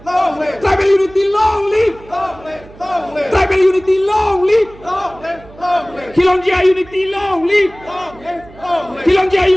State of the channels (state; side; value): noise; right; hum, 22 dB below the sound